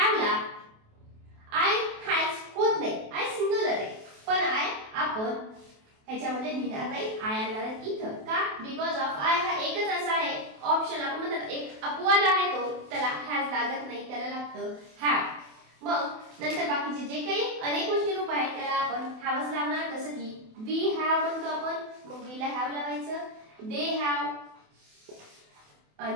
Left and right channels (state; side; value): late; left; 28 ms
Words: आय हॅज होत नाही, आय सिंग्युलर आहे, पण आय आपण ह्याच्यामध्ये लिहिणार नाही, आय आणणार इथं. का? बिकॉज ऑफ आय हा एकच असा आहे ऑप्शन, आपण म्हणतात एक अपवाद आहे तो, त्याला हॅज लागत नाही, त्याला लागतं हॅव. मग नंतर बाकीचे जे काही अनेक गोष्टी रूप आहेत त्याला आपण हॅवच लावणार. जसं की वी हॅव म्हणतो आपण, मग वी ला हॅव लावायचं, दे हॅव